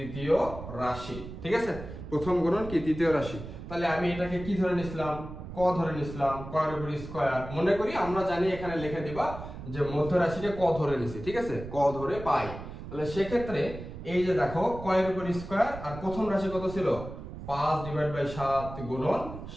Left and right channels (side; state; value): right; noise; rumble, 11 dB below the sound